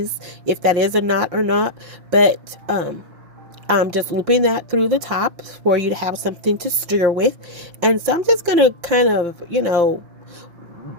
if that is a knot or not, but I'm just looping that through the top for you to have something to steer with. And so I'm just gonna kind of,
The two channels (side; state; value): left; late; 5.8 ms